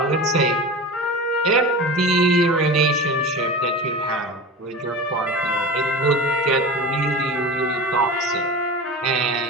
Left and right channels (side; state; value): both; normal; correlation 0.31